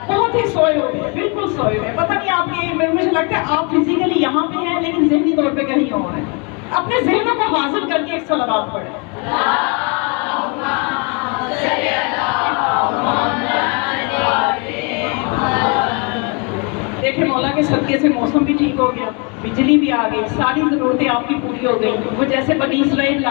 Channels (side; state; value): right; quieter; 33.8 dB